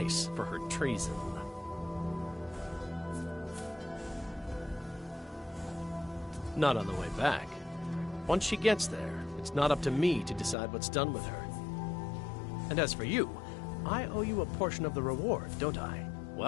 for her treason. Not on the way back. Once she gets there, it's not up to me to decide what's done with her. And as for you, I owe you a portion of the reward, don't I?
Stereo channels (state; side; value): drops out; right; at 10.6 s